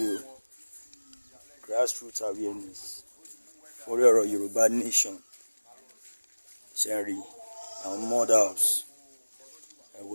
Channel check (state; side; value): inverted; both; correlation -1.00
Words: o. Grassroots awareness orí ọ̀rọ̀ Yorùbá nation. Ṣé ń rí àwọn mud house